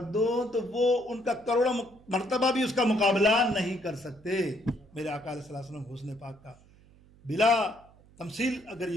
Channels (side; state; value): right; noise; hum, 26 dB below the sound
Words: دو، تو وہ ان کا کروڑوں مرتبہ بھی اس کا مقابلہ نہیں کر سکتے. میرے آقا علیہ السلام حسن پاک کا بلا تمثیل اگر